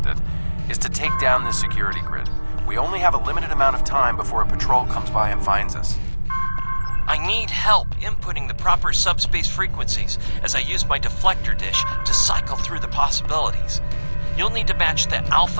it, is to take down this security grid. We only have a limited amount of time before a patrol comes by and finds us. I need help inputting the proper subspace frequencies as I use my deflector dish to cycle through the possibilities. you'll need to match the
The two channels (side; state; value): both; inverted; correlation -1.00